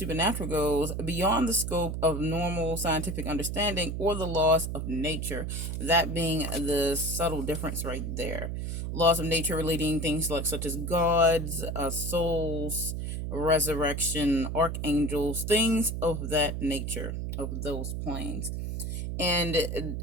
goes beyond the scope of normal scientific understanding or the laws of nature. That being the subtle difference right there. Laws of nature relating things like such as gods, souls, resurrection, archangels, things of that nature, of those planes. And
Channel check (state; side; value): noise; right; hum, 3 dB below the sound